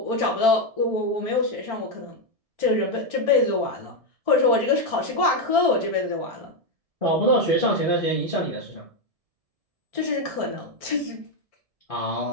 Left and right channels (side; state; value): left; late; 1.7 ms